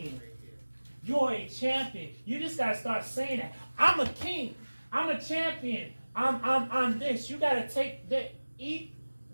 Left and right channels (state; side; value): inverted; both; correlation -1.00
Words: You are a champion. You just gotta start saying that. I'm a king. I'm a champion. I'm this. You gotta take that.